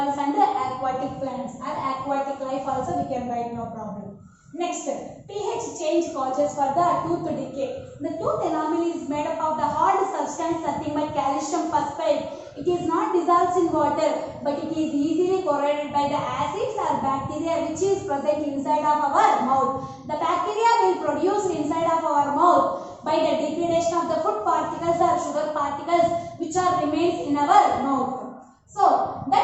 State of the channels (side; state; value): both; identical; correlation 1.00